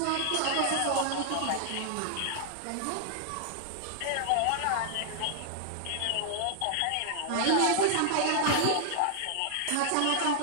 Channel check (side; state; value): both; different; correlation -0.01